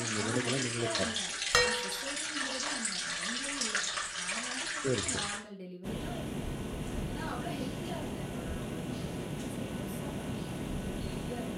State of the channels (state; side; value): identical; both; correlation 1.00